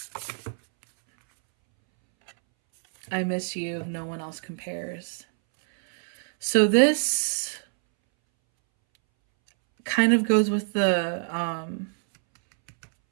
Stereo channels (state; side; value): silent; left; 61 dB below the other